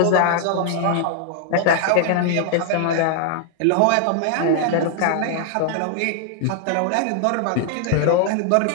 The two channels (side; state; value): both; different; correlation 0.00